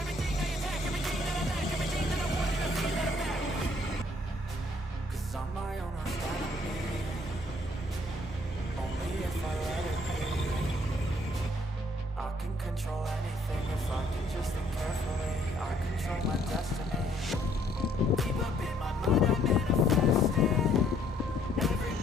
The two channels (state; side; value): normal; both; correlation 0.65